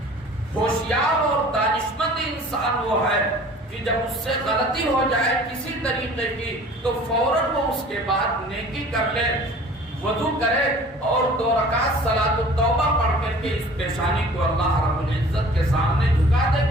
ہوشیار اور دانشمند انسان وہ ہے کہ جب اس سے غلطی ہو جائے کسی طریقے کی تو فوراً وہ اس کے بعد نیکی کر لے، وضو کرے اور 2 رکعت صلاۃ التوبہ پڑھ کر کے اس پیشانی کو اللہ رب العزت کے سامنے جھکا دے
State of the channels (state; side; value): normal; both; correlation 0.47